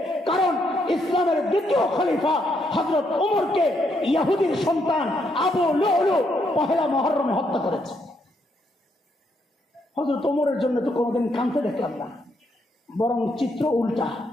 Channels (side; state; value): both; normal; correlation 0.76